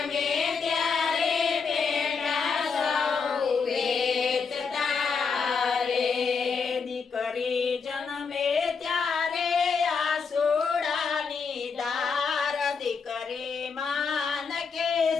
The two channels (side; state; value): right; quieter; 5.4 dB